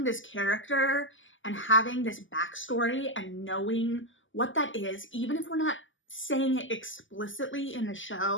this character and having this backstory and knowing what that is, even if we're not saying it explicitly in the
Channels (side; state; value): right; late; 0.56 ms